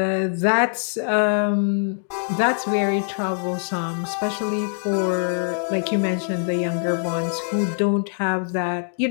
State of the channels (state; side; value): silent; right; digital silence